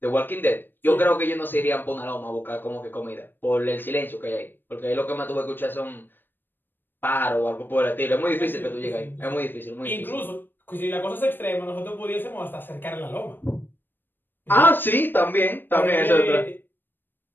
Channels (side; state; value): right; late; 0.095 ms